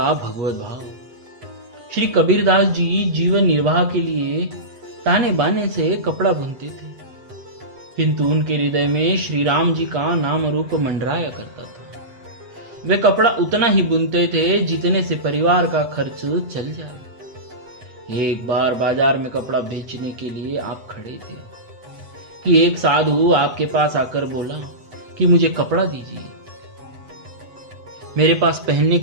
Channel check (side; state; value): left; late; 8.0 ms